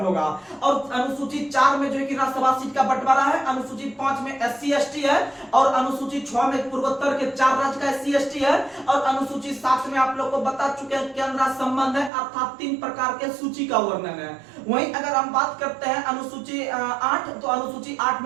और अनुसूची 4 में जो है कि राज्यसभा सीट का बंटवारा है, अनुसूची 5 में SC ST है, और अनुसूची 6 में पूर्वोत्तर के 4 राज्य का SC ST है, और अनुसूची 7 में आप लोग को बता चुके हैं केंद्र संबंध है, अर्थात 3 प्रकार के सूची का वर्णन है। वहीं अगर हम बात करते हैं अनुसूची 8, तो अनुसूची 8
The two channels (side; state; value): left; drops out; at 12.1 s